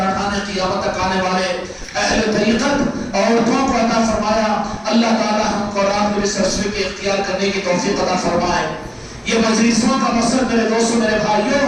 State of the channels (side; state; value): both; identical; correlation 1.00